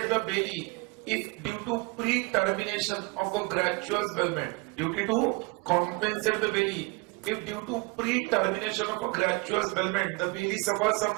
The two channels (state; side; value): quieter; left; 27.4 dB